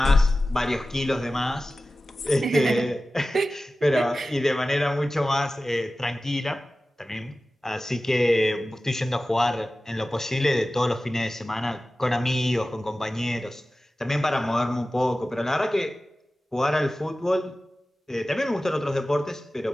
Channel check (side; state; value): both; normal; correlation 0.96